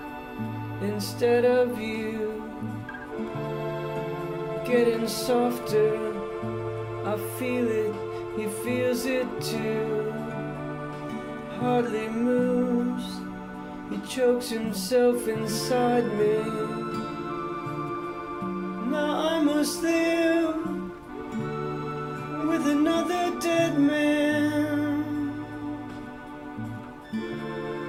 instead of you. Getting softer, I feel it, he feels it too. Hardly moves, he chokes himself inside me. Now I must live with another dead man.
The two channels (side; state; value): both; identical; correlation 1.00